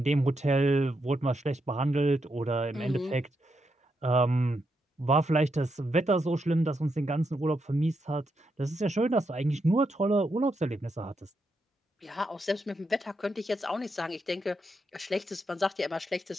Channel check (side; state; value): both; normal; correlation 0.82